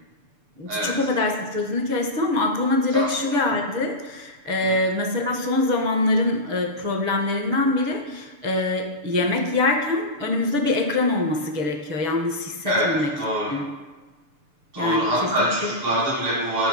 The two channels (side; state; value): left; late; 6.8 ms